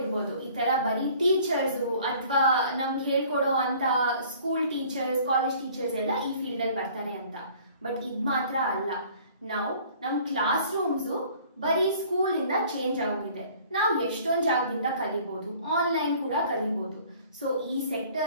ಈ ತರ ಬರೀ ಟೀಚರ್ಸ್ ಅಥವಾ ನಮ್ಗೆ ಹೇಳ್ಕೊಡೋ ಅಂತ ಸ್ಕೂಲ್ ಟೀಚರ್ಸ್, ಕಾಲೇಜ್ ಟೀಚರ್ಸ್ ಎಲ್ಲ ಈ ಫೀಲ್ಡ್ ಅಲ್ಲಿ ಬರ್ತಾರೆ ಅಂತ. ಬಟ್ ಇದ್ ಮಾತ್ರ ಅಲ್ಲ, ನಾವು ನಮ್ ಕ್ಲಾಸ್ ರೂಮ್ಸು ಬರೀ ಸ್ಕೂಲ್ ಇಂದ ಚೇಂಜ್ ಆಗೋಗಿದೆ. ನಾವು ಎಷ್ಟೊಂದು ಜಾಗದಿಂದ ಕಲಿಬಹುದು, ಆನ್ಲೈನ್ ಕೂಡ ಕಲಿಬಹುದು. ಸೊ ಈ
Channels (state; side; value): inverted; both; correlation -0.52